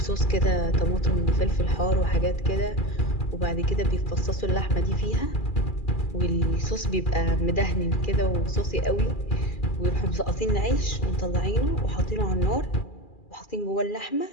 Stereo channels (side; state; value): right; late; 2.4 ms